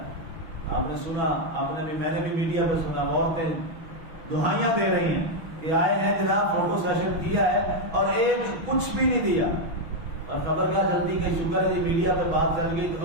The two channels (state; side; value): late; left; 6.1 ms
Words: آپ نے سنا، آپ نے بھی، میں نے بھی میڈیا پہ سنا، عورتیں دہائیاں دے رہی ہیں کہ آئے ہیں جناب فوٹو سیشن کیا ہے اور ایک کچھ بھی نہیں دیا، اور خبر کیا جلدی کہ شکر ہے جی میڈیا پہ بات چل گئی تو